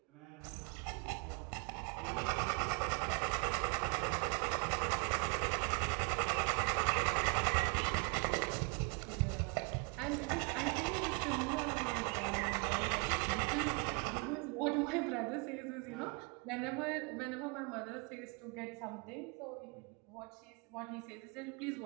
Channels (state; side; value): quieter; left; 33.4 dB